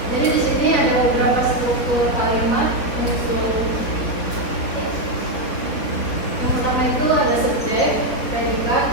Jadi di sini ada beberapa struktur kalimat unsur. Yang pertama itu ada subjek, predikat,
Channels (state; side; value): late; right; 4.2 ms